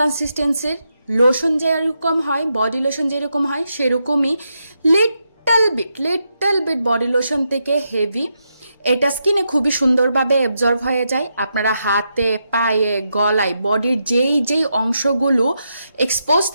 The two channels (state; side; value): inverted; both; correlation -0.83